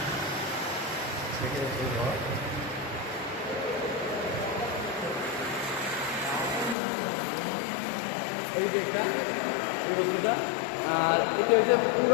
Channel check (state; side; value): drops out; right; at 6.8 s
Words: এই যে একটা এই বস্তুটা আর এটা হচ্ছে